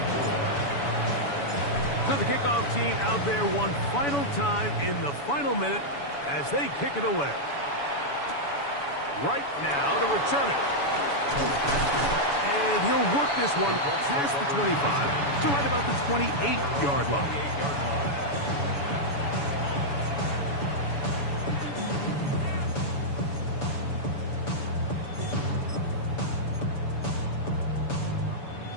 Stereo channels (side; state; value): right; late; 7.0 ms